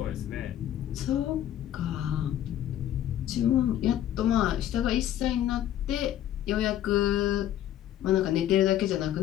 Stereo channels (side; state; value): right; quieter; 11.7 dB